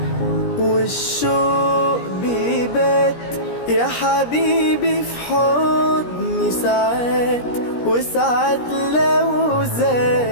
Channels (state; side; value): late; right; 17 ms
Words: والشوق بيبات يا حبيبي في حضني ساعات، وساعات لو